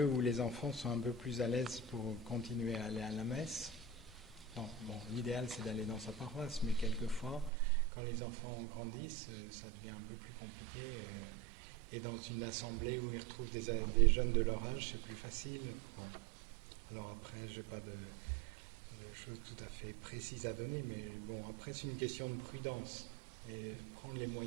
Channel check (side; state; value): left; drops out; at 7.5 s